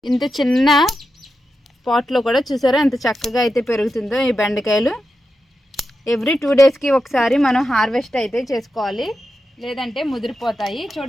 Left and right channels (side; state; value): both; normal; correlation 0.89